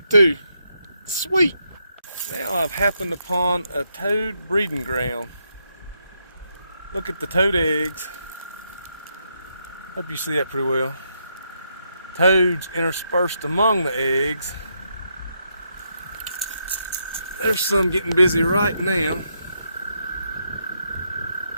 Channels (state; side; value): inverted; both; correlation -0.80